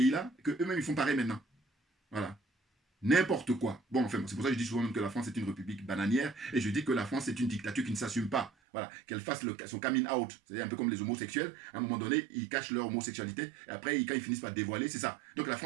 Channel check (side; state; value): left; drops out; at 8.5 s